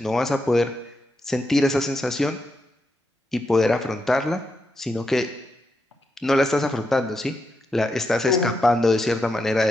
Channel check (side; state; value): both; normal; correlation 0.84